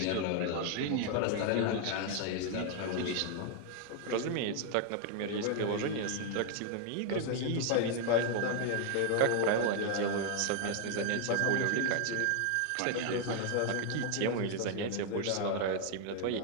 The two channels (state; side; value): different; both; correlation 0.00